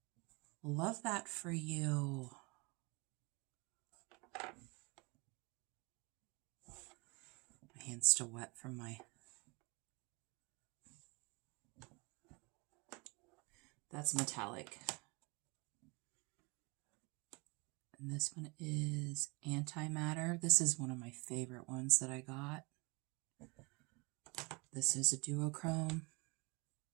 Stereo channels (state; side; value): quieter; left; 28.3 dB